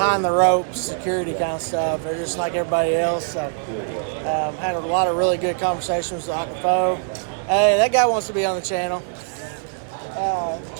the ropes security kind of stuff. They're just like everybody else. So had a lot of really good conversations with Akafo. Hey, that guy wants to be on the channel.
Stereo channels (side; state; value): left; silent; 64 dB below the other